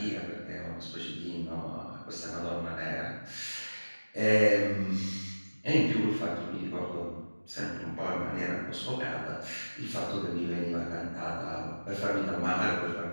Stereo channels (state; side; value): inverted; both; correlation -1.00